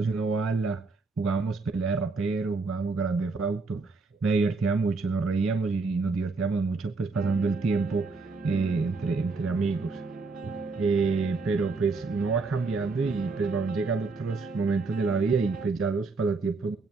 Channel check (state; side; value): quieter; left; 4.0 dB